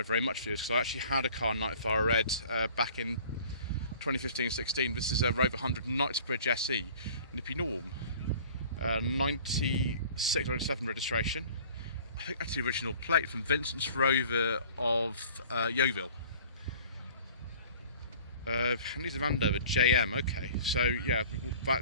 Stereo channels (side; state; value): both; inverted; correlation -0.48